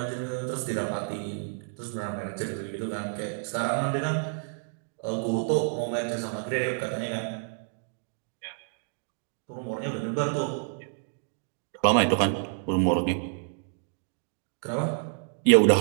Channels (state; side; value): silent; left; digital silence